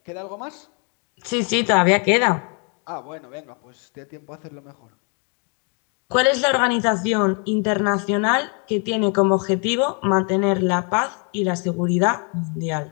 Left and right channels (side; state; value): right; quieter; 38.2 dB